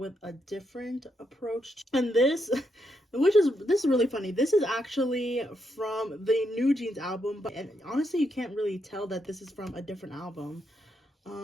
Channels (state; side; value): normal; both; correlation 0.80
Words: a different approach. And this is really funny. This is actually from the New Jeans album, but and honestly, you can't really tell that this is from a different album.